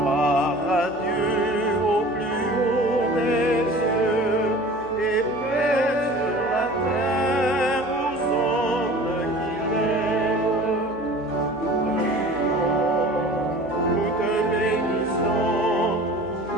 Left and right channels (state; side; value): normal; both; correlation 0.42